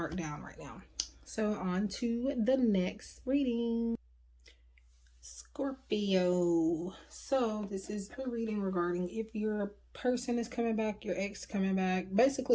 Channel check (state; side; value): identical; both; correlation 1.00